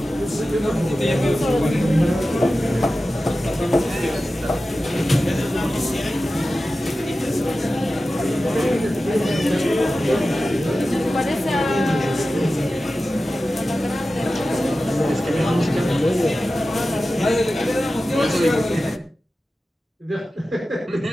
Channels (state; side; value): normal; both; correlation 0.94